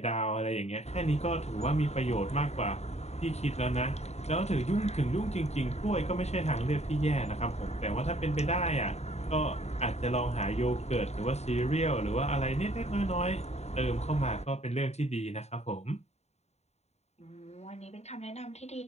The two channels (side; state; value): right; late; 0.32 ms